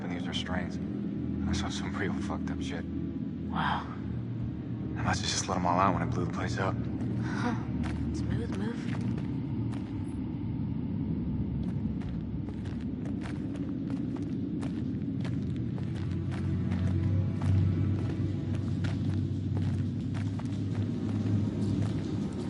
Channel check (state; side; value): identical; both; correlation 1.00